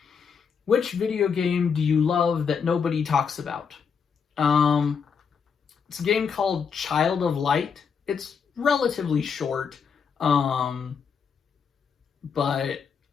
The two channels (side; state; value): right; quieter; 6.4 dB